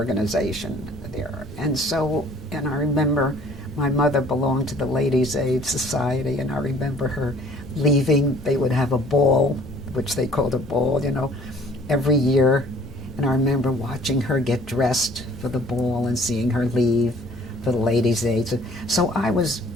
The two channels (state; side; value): normal; both; correlation 0.55